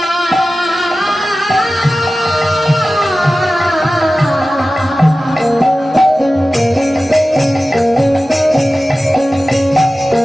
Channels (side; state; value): both; normal; correlation 0.95